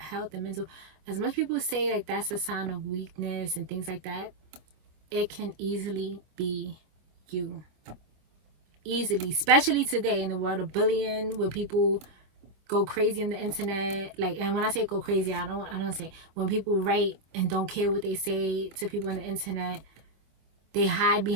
and mental, as much people say like that's a sign of weakness and things like that, it can easily be you. Easily, especially today in the world of bullying, where people go crazy on the internet. Like, and when I say go crazy, I don't say when people write and don't care what they say to people on the internet. They hide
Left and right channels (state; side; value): late; left; 25 ms